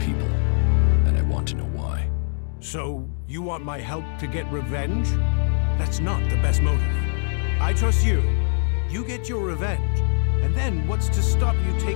and I want to know why. So, you want my help to get revenge? That's not the best motive. I trust you. You get your revenge. And then what's to stop you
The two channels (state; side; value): silent; right; 59 dB below the other